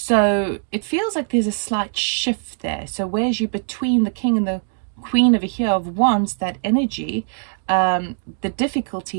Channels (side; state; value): left; silent; 65 dB below the other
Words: it feels like there's a slight shift there. So whereas you're between the King and the Queen over here of Wands, that energy, the